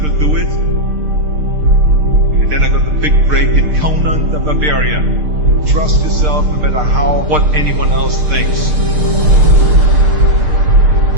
do it. And then I got the big break in Conan the Barbarian. Trust yourself no matter what anyone else thinks.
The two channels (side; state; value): left; late; 6.6 ms